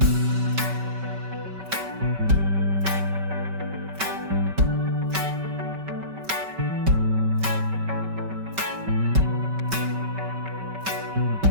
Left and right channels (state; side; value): late; left; 5.2 ms